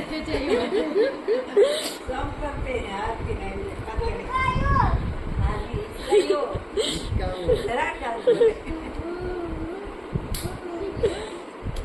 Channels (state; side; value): identical; both; correlation 1.00